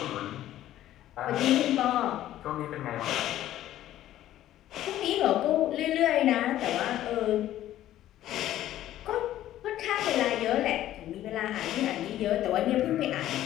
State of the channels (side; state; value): right; quieter; 13.2 dB